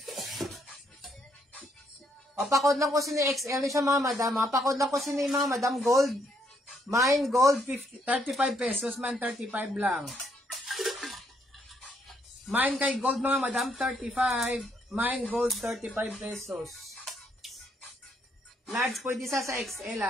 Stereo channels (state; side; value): normal; both; correlation 0.72